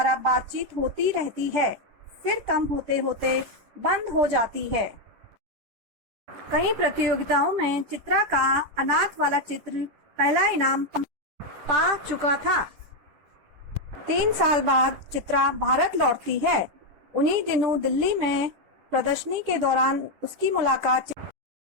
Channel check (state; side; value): late; left; 10 ms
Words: बातचीत होती रहती है, फिर कम होते होते बंद हो जाती है। कई प्रतियोगिताओं में चित्रा का अनाथ वाला चित्र पहला इनाम पा चुका था। 3 साल बाद चित्रा भारत लौटती है। उन्हीं दिनों दिल्ली में प्रदर्शनी के दौरान उसकी मुलाकात